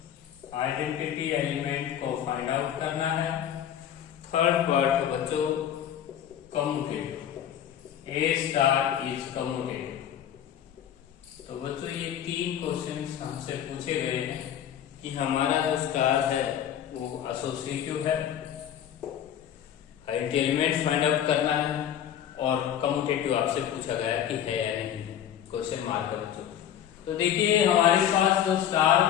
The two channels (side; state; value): right; quieter; 10.1 dB